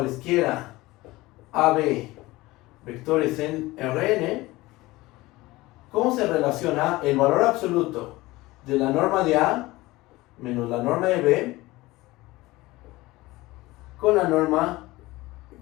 AB vectores en Rn, ¿cómo se relaciona el valor absoluto de la norma de A menos la norma de B con la norma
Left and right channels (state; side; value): quieter; right; 19.8 dB